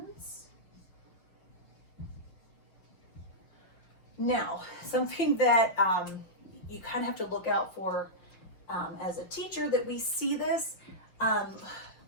Now, something that you kind of have to look out for as a teacher, that we see this.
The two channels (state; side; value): late; right; 5.9 ms